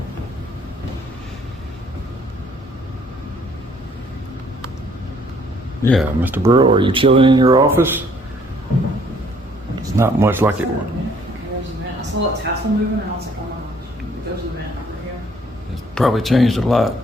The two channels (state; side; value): normal; both; correlation 0.62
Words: Yeah, Mr. Burrow, are you chilling in your office? It's not much like it was. Okay, there's a vent. I saw that tassel moving and I was like, oh my gosh, there's a vent over here. It's probably changed a lot